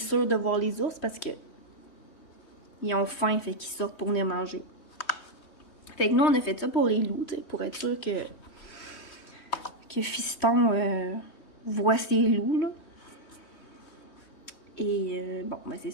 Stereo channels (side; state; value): right; late; 3.2 ms